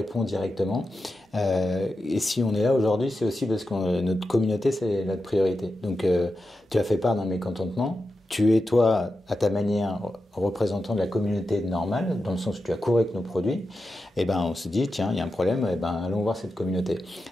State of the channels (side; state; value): both; normal; correlation 0.90